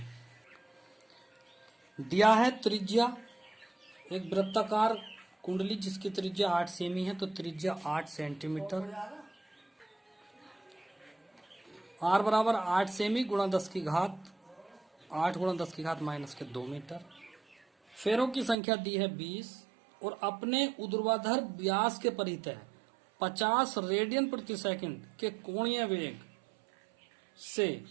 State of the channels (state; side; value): drops out; left; at 18.6 s